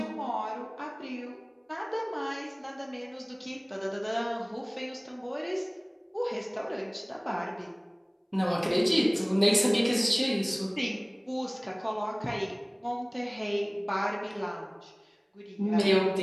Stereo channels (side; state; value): both; identical; correlation 1.00